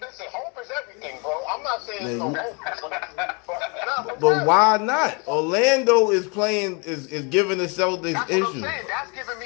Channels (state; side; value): quieter; right; 32.7 dB